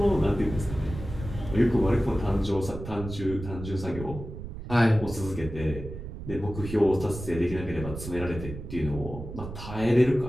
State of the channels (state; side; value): noise; right; rumble, 10 dB below the sound